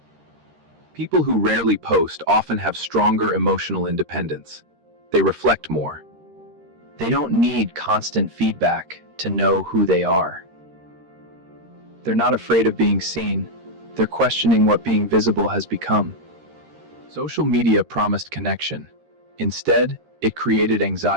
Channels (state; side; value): late; left; 13 ms